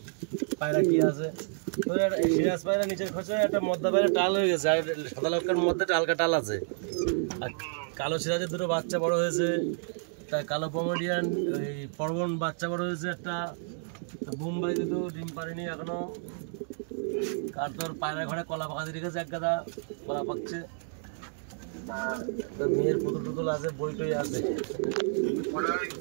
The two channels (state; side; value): silent; left; 58 dB below the other